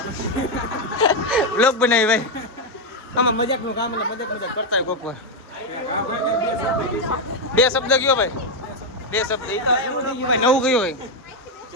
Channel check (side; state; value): both; normal; correlation 0.03